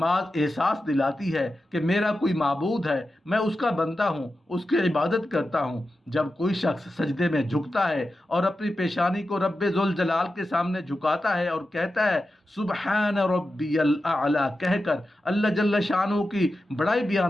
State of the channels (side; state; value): both; normal; correlation 0.91